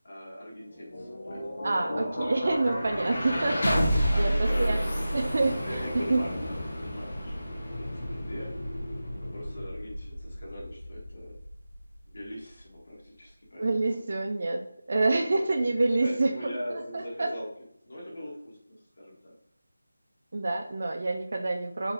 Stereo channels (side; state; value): both; inverted; correlation -0.95